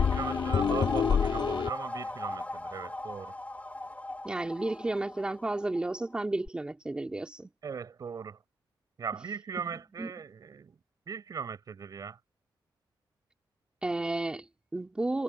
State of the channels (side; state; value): both; normal; correlation 0.78